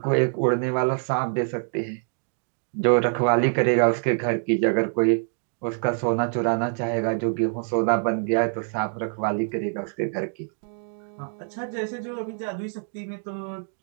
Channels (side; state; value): left; silent; 60 dB below the other